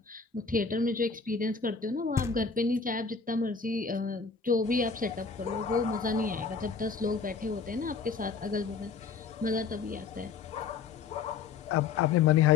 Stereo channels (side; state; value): right; quieter; 5.3 dB